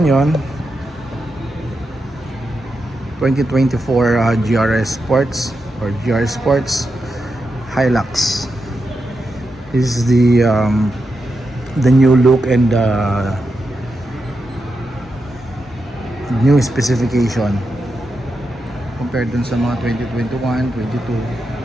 2024 GRS Sports or GR Sports Hilux. This is the new look and new specification compared dun sa mga 2021, 22,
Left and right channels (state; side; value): normal; both; correlation 0.87